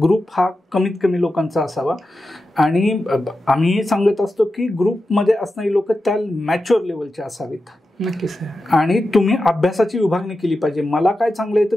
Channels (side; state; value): both; normal; correlation 0.91